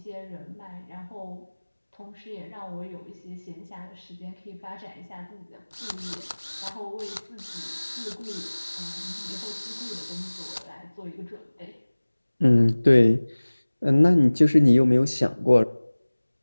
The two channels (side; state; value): both; inverted; correlation -1.00